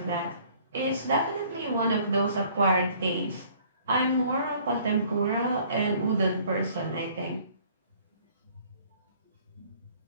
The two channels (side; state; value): both; inverted; correlation -0.57